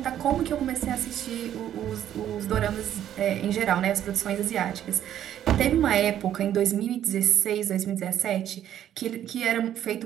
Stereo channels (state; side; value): quieter; left; 10.9 dB